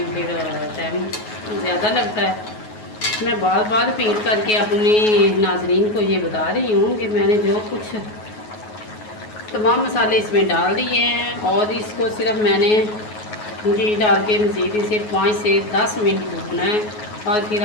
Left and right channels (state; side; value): late; right; 9.4 ms